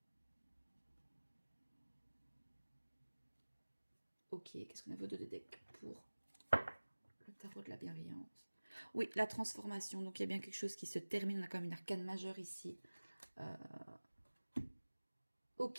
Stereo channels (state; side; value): inverted; both; correlation -1.00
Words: Ok, qu'est-ce qu'on a vos deux decks pour le tarot de la bienveillance? Oui, la transformation. Donc, il y a bien quelque chose qui se termine. On a quand même une arcane majeure ici.